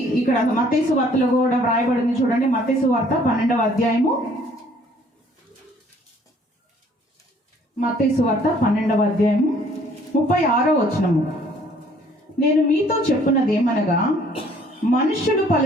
ఇక్కడ మత్తయి సువార్తలో కూడా వ్రాయబడింది. చూడండి, మత్తయి సువార్త 12వ అధ్యాయము, మత్తయి సువార్త 12వ అధ్యాయము 36వ వచనము. నేను మీతో చెప్పున్నది ఏమనగా, మనుష్యుడు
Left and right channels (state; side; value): normal; both; correlation 0.59